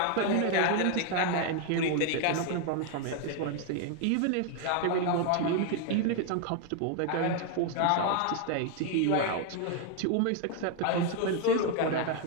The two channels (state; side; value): different; both; correlation 0.01